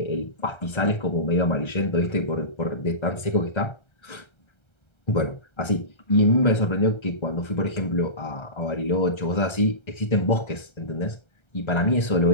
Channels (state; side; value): late; right; 1.3 ms